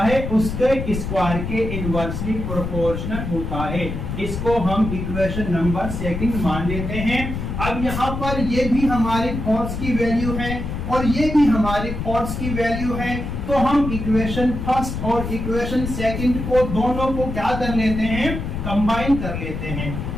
है उसके स्क्वायर के इनवर्सली प्रोपोर्शनल होता है। इसको हम इक्वेशन नंबर सेकंड मान लेते हैं। अब यहाँ पर ये भी हमारे फोर्स की वैल्यू है और ये भी हमारे फोर्स की वैल्यू है, तो हम इक्वेशन फर्स्ट और इक्वेशन सेकंड को दोनों को क्या कर लेते हैं? कंबाइन कर लेते हैं।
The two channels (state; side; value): noise; left; rumble, 5 dB below the sound